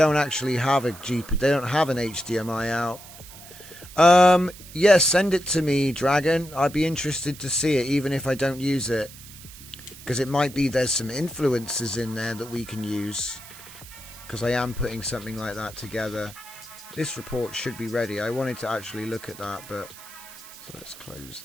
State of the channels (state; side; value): noise; right; hiss, 17 dB below the sound